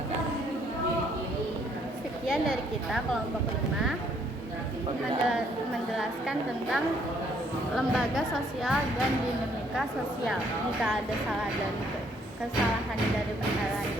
Sekian dari kita kelompok 5 menjelaskan tentang lembaga sosial dan dinamika sosial. Jika ada kesalahan dari penjelasan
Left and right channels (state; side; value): normal; both; correlation 0.66